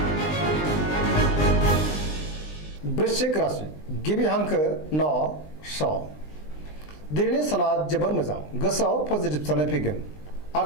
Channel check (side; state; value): right; late; 20 ms